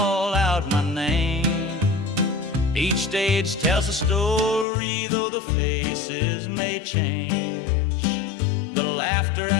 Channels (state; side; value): drops out; right; at 4.7 s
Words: out my name. Each stage tells a story, though the faces may change. The laughter